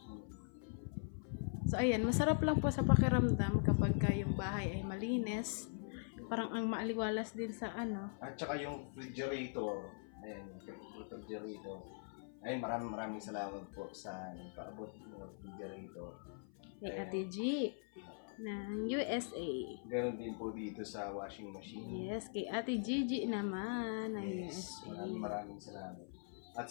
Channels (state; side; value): silent; right; 50 dB below the other